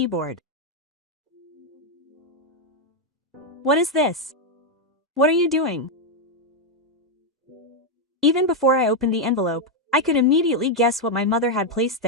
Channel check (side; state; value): both; normal; correlation 0.02